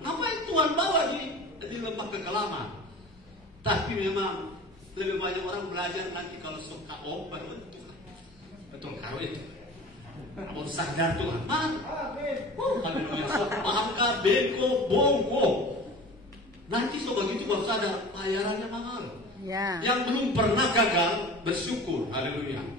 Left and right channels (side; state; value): both; normal; correlation 0.39